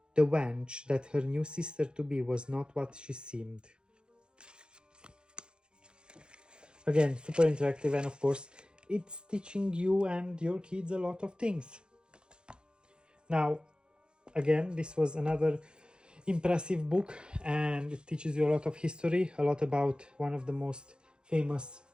wench that her new sister-to-be was not what she seemed. Again, super interactive, and of course, it's teaching you and your kids a lot of things. Now, again, this was another impressive book, and it teaches you a lot of history, a lot about one of the most famous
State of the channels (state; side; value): late; left; 0.049 ms